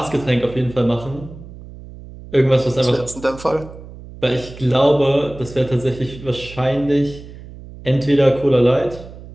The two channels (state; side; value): noise; right; hum, 16 dB below the sound